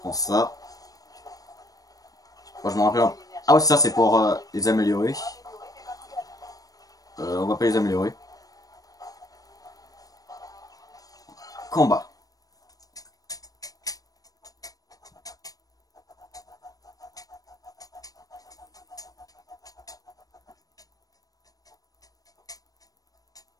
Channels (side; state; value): right; late; 0.18 ms